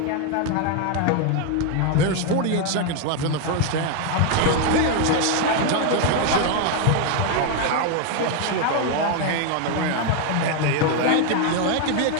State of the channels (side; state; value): both; different; correlation 0.01